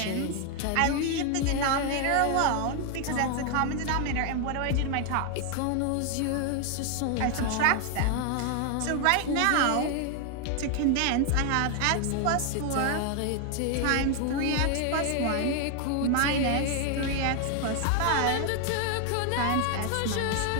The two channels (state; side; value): different; both; correlation 0.00